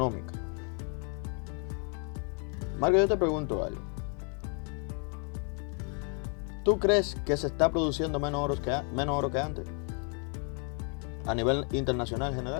Marco, yo te pregunto algo. ¿Tú crees que se está produciendo menos oro que antes? A nivel internacional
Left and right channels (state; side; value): quieter; right; 39.7 dB